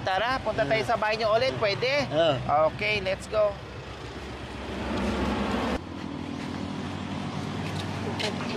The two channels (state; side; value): identical; both; correlation 1.00